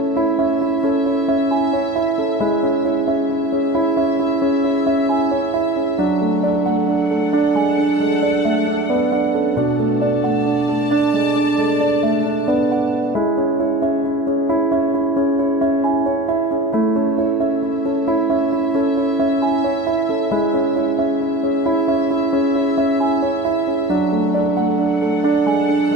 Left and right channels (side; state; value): both; normal; correlation 0.37